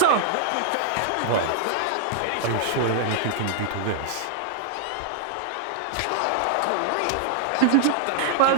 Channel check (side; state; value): both; different; correlation -0.01